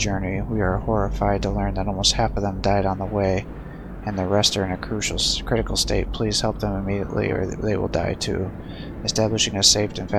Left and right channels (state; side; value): identical; both; correlation 1.00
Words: We are horrified to learn that almost half of them died on the way, and the rest are in a critical state. Please help them immediately or they will die too. Establishing a safe and